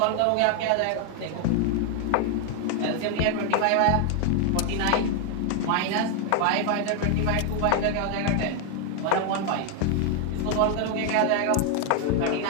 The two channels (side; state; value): both; different; correlation 0.01